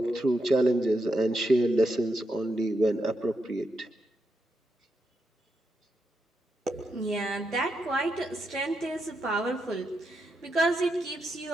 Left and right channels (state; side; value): normal; both; correlation 0.83